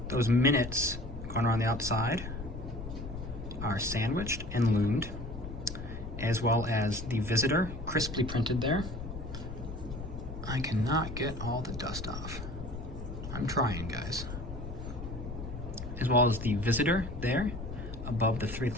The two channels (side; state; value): left; noise; rumble, 8 dB below the sound